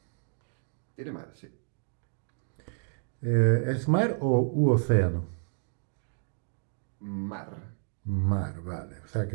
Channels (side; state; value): left; silent; 57 dB below the other